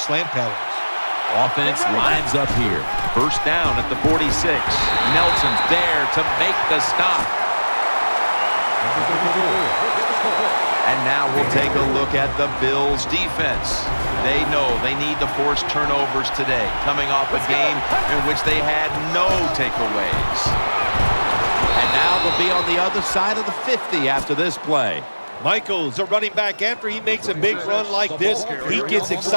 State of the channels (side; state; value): both; inverted; correlation -1.00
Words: slant patterns. Offense lines up here. First down at the 46. Nelson's there to make the stop. And now we'll take a look at the Bills defense. They know they need to force turnovers today, coming off a game in which they had no takeaways. And now they'll be on the other side of the 50 after this play. Michaels, a running back, after he makes a big run like this, he gets